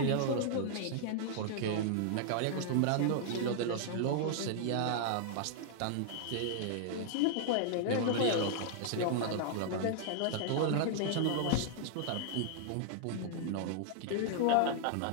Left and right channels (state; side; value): different; both; correlation -0.01